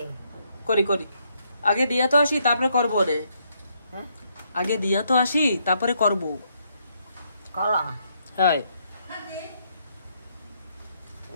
করি করি, আগে দিয়া তো আসি তারপরে করবো রে। হ্যাঁ আগে দিয়া তো আসি তারপরে করবো। কলা হ্যাঁ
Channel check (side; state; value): both; inverted; correlation -0.74